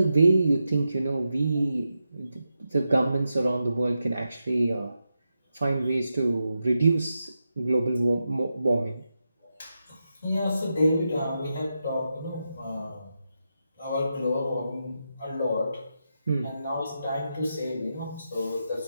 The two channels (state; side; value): inverted; both; correlation -0.87